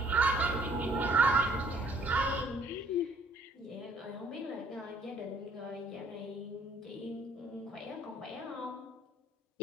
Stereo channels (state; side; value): normal; both; correlation 0.60